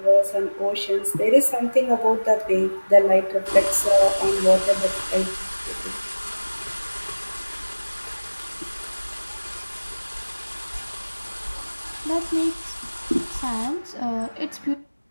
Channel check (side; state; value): both; inverted; correlation -1.00